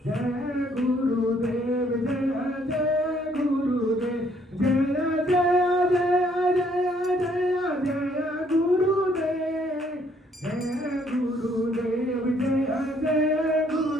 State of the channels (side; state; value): both; normal; correlation 0.66